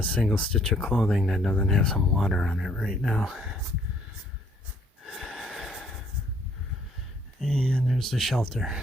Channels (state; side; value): normal; both; correlation 0.64